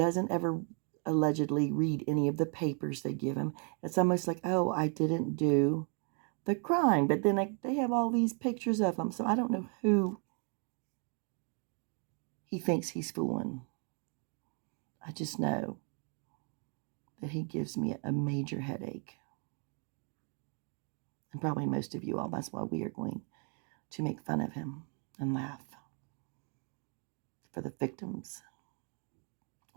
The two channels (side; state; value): left; quieter; 39.7 dB